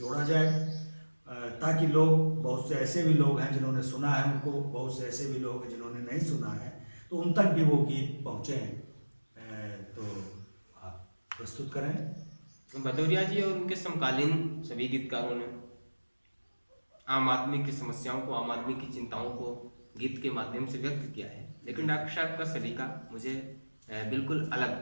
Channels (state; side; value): inverted; both; correlation -1.00